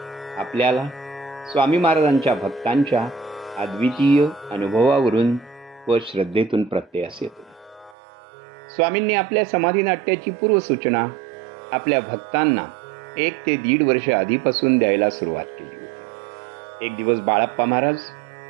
आपल्याला स्वामी महाराजांच्या भक्तांच्या अद्वितीय अनुभवावरून व श्रद्धेतून प्रत्ययास येतो. स्वामींनी आपल्या समाधी नाट्याची पूर्वसूचना आपल्या भक्तांना 1 ते 1.5 वर्ष आधीपासून द्यायला सुरुवात केली होती. एक दिवस बाळप्पा महाराज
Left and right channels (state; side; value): drops out; left; at 8.0 s